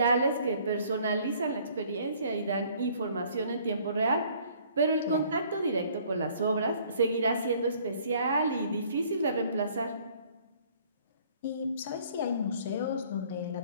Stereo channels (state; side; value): inverted; both; correlation -0.58